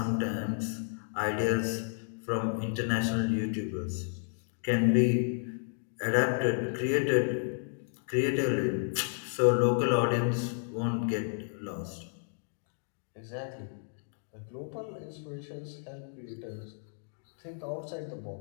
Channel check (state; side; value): silent; right; digital silence